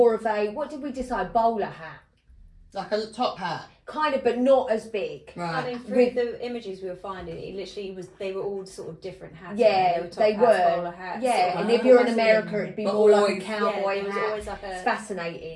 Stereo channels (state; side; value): identical; both; correlation 1.00